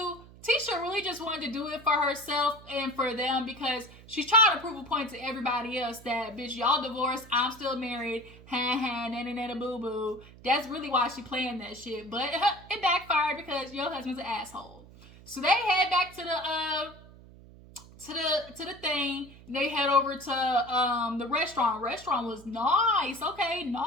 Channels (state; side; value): noise; right; hum, 20 dB below the sound